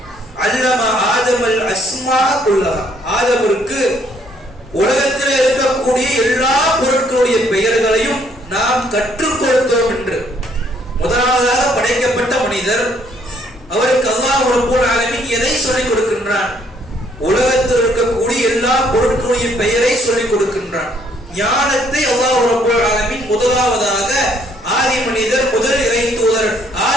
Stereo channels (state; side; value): normal; both; correlation 0.66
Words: அல்லம ஆதமல் அஸ்மா குல்லஹா, ஆதமிற்கு உலகத்தில் இருக்கக்கூடிய எல்லா பொருட்களுடைய பெயர்களையும் நாம் கற்றுக் கொடுத்தோம் என்று. முதலாவதாக படைக்கப்பட்ட மனிதர், அவருக்கு அல்லாஹ் ரப்புல் ஆலமீன் எதை சொல்லிக் கொடுக்கின்றான்? உலகத்தில் இருக்கக்கூடிய எல்லா பொருட்களுடைய பெயரை சொல்லிக் கொடுக்கின்றான். ஞானத்தை அல்லாஹ் ரப்புல் ஆலமீன் முதலாவதாக ஆதி மனிதர், முதல் இறை தூதர்